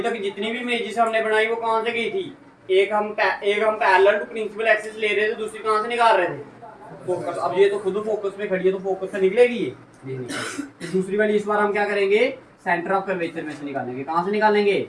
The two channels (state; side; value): identical; both; correlation 1.00